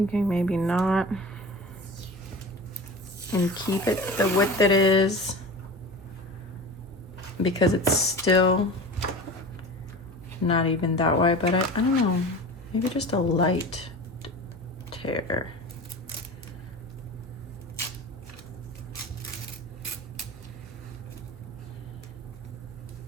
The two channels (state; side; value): normal; both; correlation 0.33